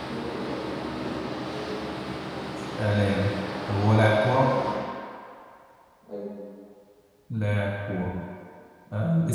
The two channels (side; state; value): both; identical; correlation 1.00